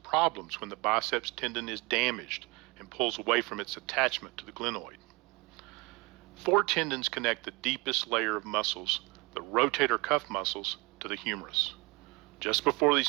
problems when the biceps tendon is damaged and pulls away from its attachment to the glenoid. 4 tendons connect the deepest layer of muscles, the rotator cuff muscles, to the humerus. Just before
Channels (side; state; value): left; quieter; 26.2 dB